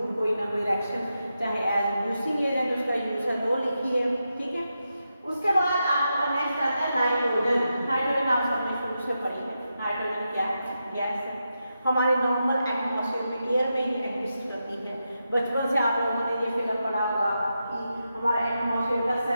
कोई ना कोई रिएक्शन चाहे एज रिड्यूसिंग एजेंट उसका यूज है वो लिखिए। ठीक है, उसके बाद आपका नेक्स्ट आता है नाइट्रोजन। नाइट्रोजन आप सबने शुरू से पढ़ी है। नाइट्रोजन क्या है? गैस है, हमारे नॉर्मल एटमॉस्फेयर में, एयर में ही एग्जिस्ट करती है। बचपन से आप लोगों ने ये फिगर पढ़ा होगा कि हमारे एटमॉस्फेयर का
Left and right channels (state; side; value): inverted; both; correlation -0.87